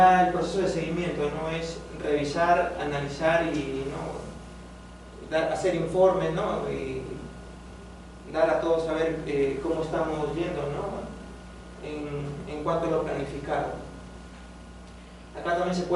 el proceso de seguimiento, ¿no? Es revisar, analizar y, ¿no? Hacer informes, ¿no? Y dar a todos a ver cómo estamos yendo, ¿no? En cuanto a lo planificado. Acá también se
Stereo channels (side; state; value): both; identical; correlation 1.00